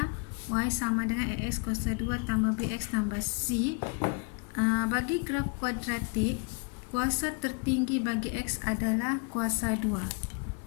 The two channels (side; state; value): right; quieter; 35.5 dB